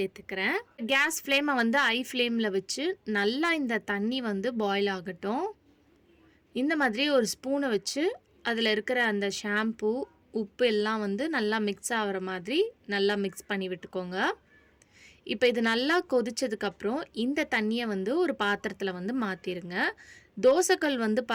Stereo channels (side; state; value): both; identical; correlation 1.00